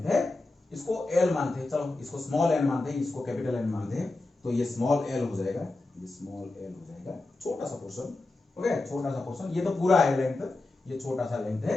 है, इसको l मानते हैं, चलो इसको स्मॉल n मानते हैं, इसको कैपिटल n मानते हैं, तो ये स्मॉल l हो जाएगा, ये स्मॉल l हो जाएगा, छोटा सा पोर्शन, ओके छोटा सा पोर्शन, ये तो पूरा है लेंथ, ये छोटा सा लेंथ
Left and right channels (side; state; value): right; quieter; 3.0 dB